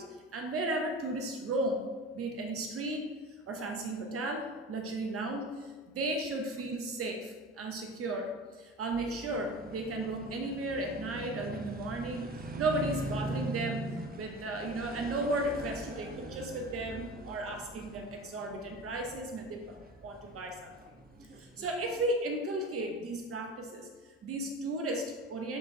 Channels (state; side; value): normal; both; correlation 0.34